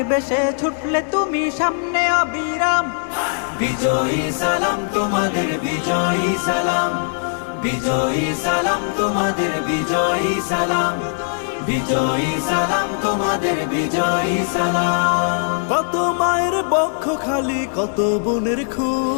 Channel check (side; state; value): right; silent; 65 dB below the other